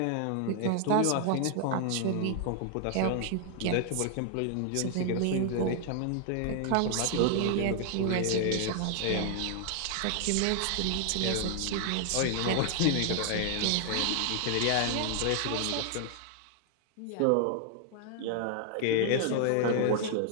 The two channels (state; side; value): different; both; correlation 0.00